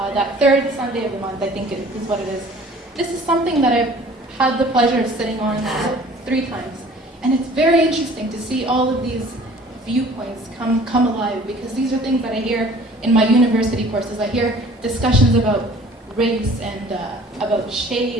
third Sunday of the month. I think is what it is. This is something that I've had the pleasure of sitting on 3 times, and it's very interesting to see all of these viewpoints come alive, because these are things that I hear in my university courses. I hear discussions about race and about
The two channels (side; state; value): both; normal; correlation 0.50